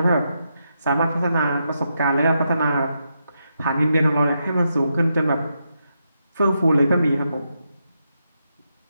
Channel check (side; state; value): both; inverted; correlation -0.83